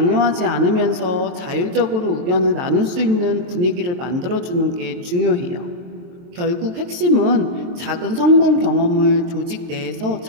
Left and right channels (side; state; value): left; late; 23 ms